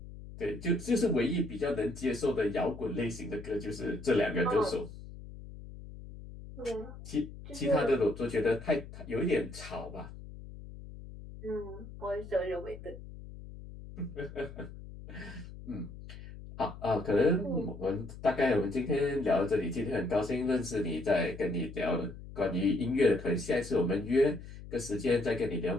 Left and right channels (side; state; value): left; noise; hum, 14 dB below the sound